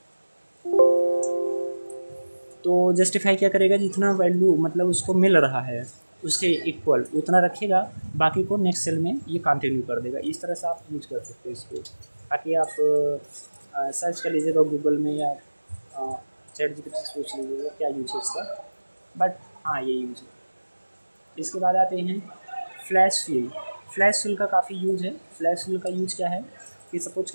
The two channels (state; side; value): inverted; both; correlation -1.00